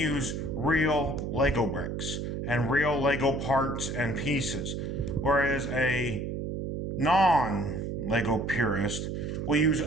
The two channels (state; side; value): noise; right; hum, 4 dB below the sound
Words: real Lego bricks and real Lego parts and pieces, whereas a non-Lego purist will use